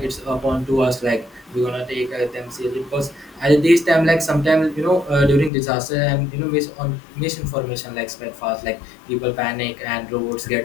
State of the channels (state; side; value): drops out; right; at 5.5 s